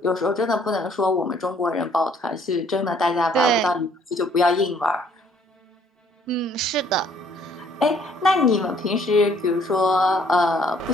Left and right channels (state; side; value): normal; both; correlation 0.62